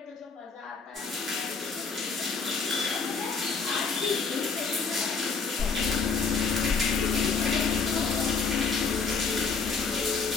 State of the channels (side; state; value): right; quieter; 5.0 dB